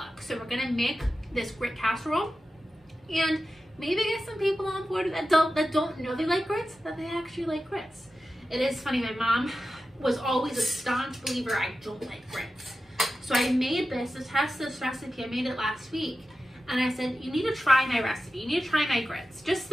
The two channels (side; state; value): both; normal; correlation 0.93